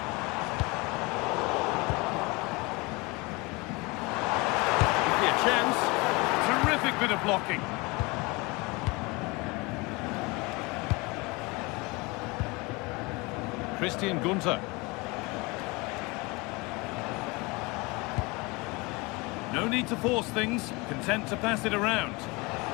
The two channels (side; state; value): right; quieter; 25.6 dB